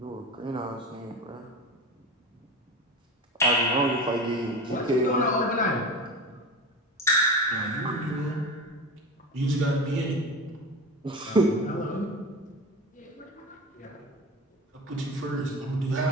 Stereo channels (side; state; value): both; normal; correlation 0.28